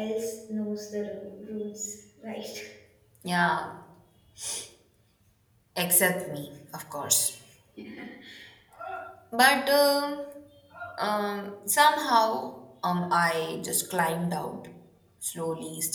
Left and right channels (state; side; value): identical; both; correlation 1.00